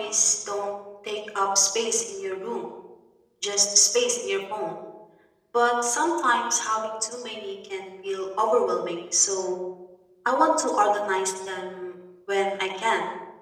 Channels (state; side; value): identical; both; correlation 1.00